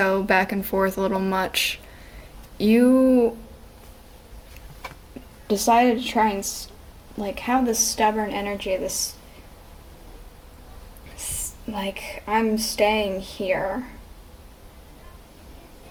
back and forth a little much, you decided to try and have this stubborn energy, this I'm staying here.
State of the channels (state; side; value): identical; both; correlation 1.00